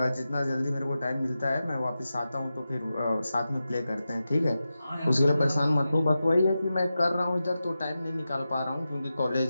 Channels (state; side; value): inverted; both; correlation -0.92